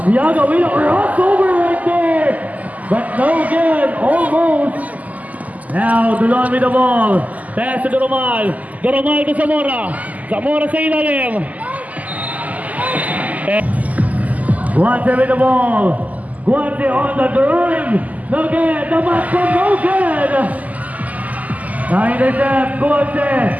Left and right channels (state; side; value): late; left; 0.077 ms